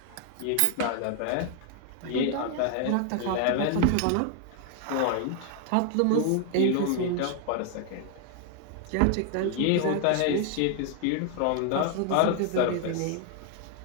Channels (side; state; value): both; different; correlation 0.00